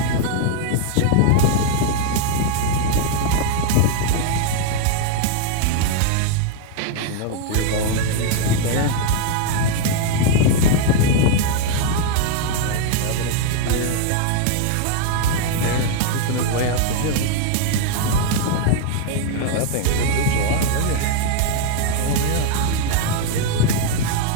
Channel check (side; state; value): both; different; correlation 0.00